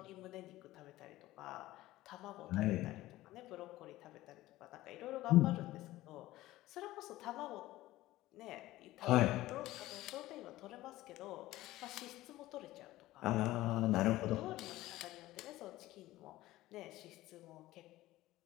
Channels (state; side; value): quieter; right; 16.7 dB